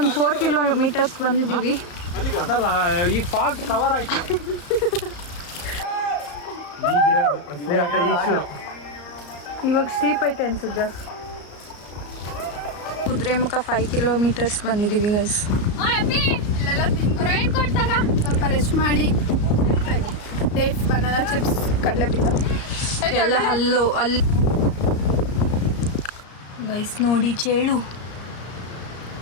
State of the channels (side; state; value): right; late; 34 ms